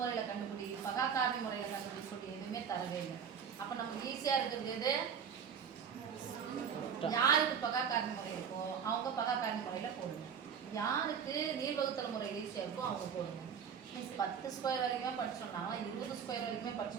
கண்டுபிடி, பகாக்காரணி முறையில் கண்டுபிடிக்கூடிய எதுவுமே தரவே இல்லை. அப்போ நமக்கு ஈஸியாக இருக்கிறது எது? யாருக்கு பகாக்காரணி முறை இருக்கோ அவங்க பகாக்காரணி முறையில் போடுங்க. யாருக்கு நீள்வகுத்தல் முறை ஈஸியாக இருக்கோ அவங்க போடுங்க. 10 ஸ்கொயர் வரைக்குமே படிச்சோம்னா 20 ஸ்கொயர் வரைக்குமே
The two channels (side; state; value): left; quieter; 7.3 dB